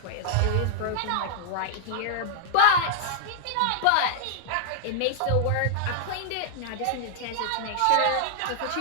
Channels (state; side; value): different; both; correlation -0.01